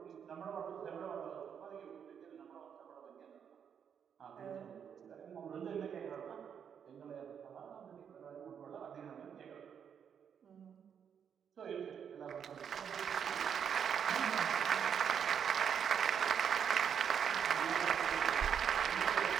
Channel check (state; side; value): quieter; left; 7.8 dB